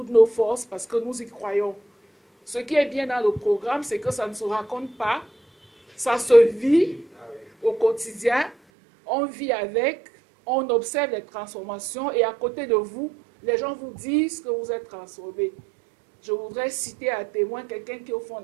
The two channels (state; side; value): drops out; left; at 8.6 s